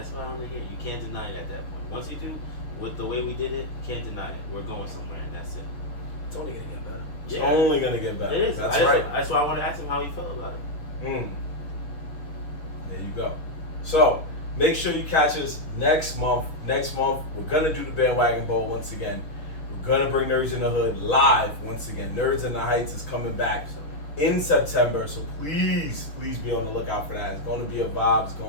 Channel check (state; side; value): late; right; 6.4 ms